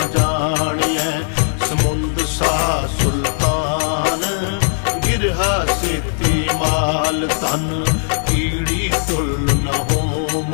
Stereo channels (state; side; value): silent; right; digital silence